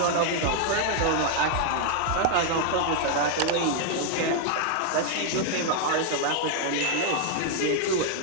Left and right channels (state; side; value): different; both; correlation 0.00